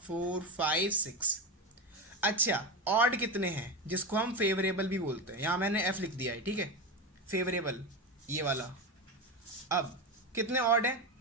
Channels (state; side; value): normal; both; correlation 0.18